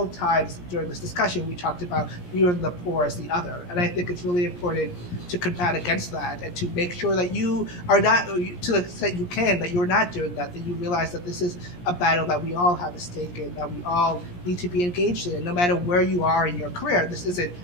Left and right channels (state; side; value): late; right; 17 ms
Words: times during this discussion, we talked about viewing the poor as the other. And I think it's really important to combat against that and to make sure that you are not, to the extent you can, that you're not doing that you realize that this is a battle that we all have a stake in, that we all need to be engaged in, no matter where you are in your career. This isn't